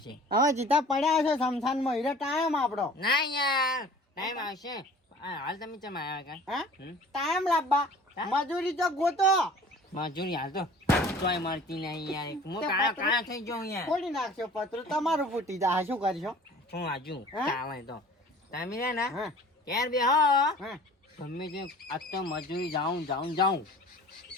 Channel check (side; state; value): both; normal; correlation 0.47